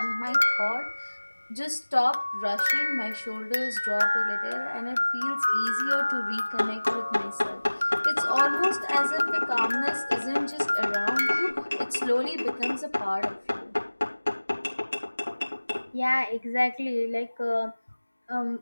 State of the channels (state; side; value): inverted; both; correlation -1.00